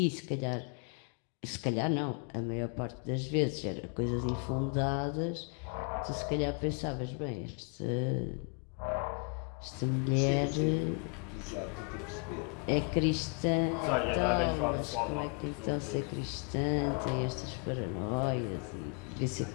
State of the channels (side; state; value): right; quieter; 36.8 dB